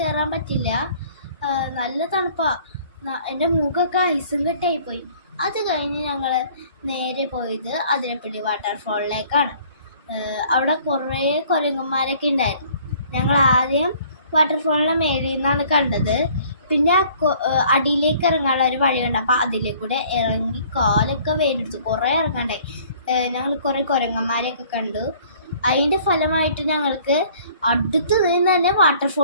പറ്റില്ല. നല്ല തണുപ്പാണ്. എൻ്റെ മൂക്കൊക്കെ ഐസും കെട്ടായിപ്പോയി. അത് കഴിഞ്ഞ് ഞങ്ങൾ നേരെ പോയത് അതിരപ്പള്ളി വാട്ടർഫോളിലേക്കാണ്. അവിടെ കുറേ കുരങ്ങന്മാരൊക്കെ ഉണ്ടായിരുന്നു. ഞങ്ങൾ ആദ്യം വാട്ടർഫോളിൻ്റെ മേളിൽ നിന്നാണ് കണ്ടത്. പിന്നെ അടിയിലേക്ക് ഇറങ്ങാനുള്ള ഒരു വഴിയുണ്ട്. അപ്പോൾ അതിലേക്കൂടെ ഇറങ്ങി കാലൊക്കെ വേണ്ടെടുത്തു. കുറേ ഇറങ്ങണ്ടേ. ഞങ്ങൾ കുറേ കുരങ്ങന്മാരെയൊക്കെ കണ്ടു. അതിൻ്റെ ഫലമായിട്ട് ഞങ്ങൾക്ക് അടുത്ത് നിന്ന് തന്നെ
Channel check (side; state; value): both; inverted; correlation -0.55